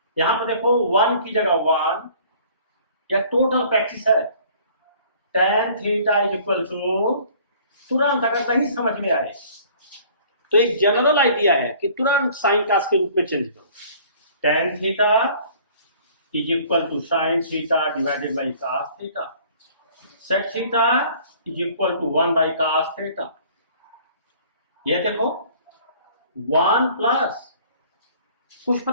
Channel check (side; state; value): both; inverted; correlation -0.53